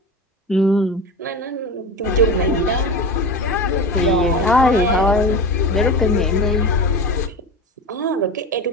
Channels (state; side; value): normal; both; correlation 0.27